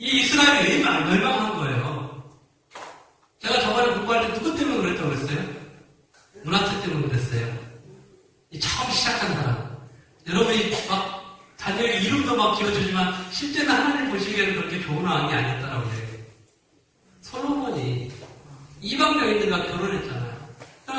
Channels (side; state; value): both; identical; correlation 1.00